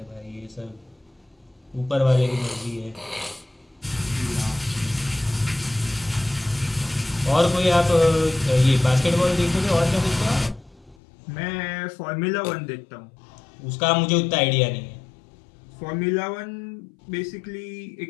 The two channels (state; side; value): drops out; right; at 11.0 s